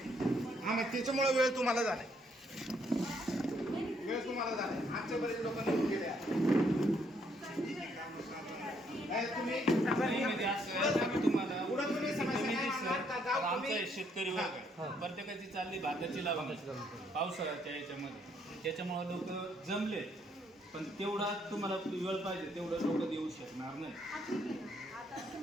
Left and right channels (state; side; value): normal; both; correlation 0.70